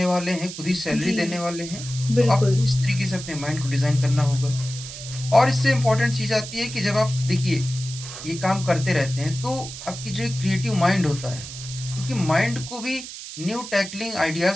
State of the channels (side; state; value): right; noise; hiss, 11 dB below the sound